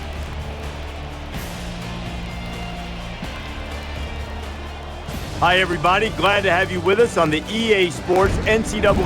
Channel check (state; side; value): identical; both; correlation 1.00